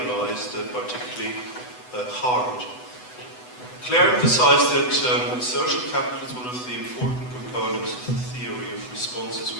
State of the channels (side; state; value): right; late; 8.0 ms